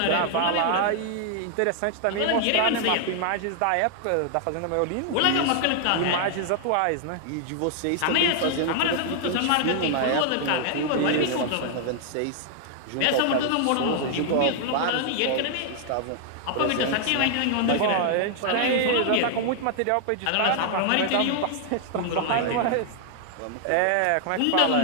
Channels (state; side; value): different; both; correlation 0.00